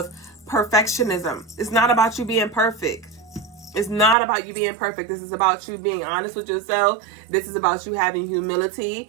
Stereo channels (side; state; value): left; drops out; at 4.2 s